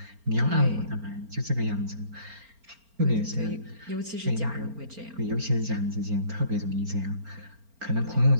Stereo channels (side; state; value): left; late; 4.4 ms